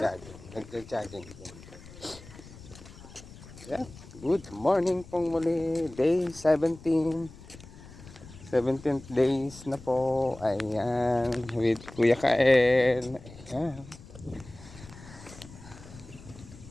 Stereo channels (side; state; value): left; noise; rumble, 18 dB below the sound